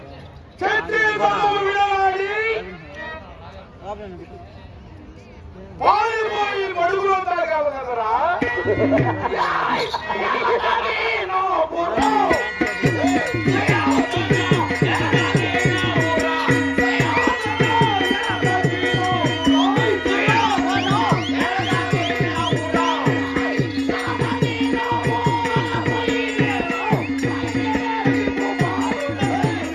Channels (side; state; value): both; identical; correlation 1.00